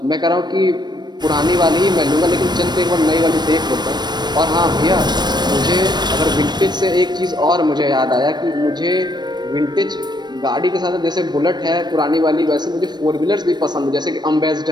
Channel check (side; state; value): left; late; 0.21 ms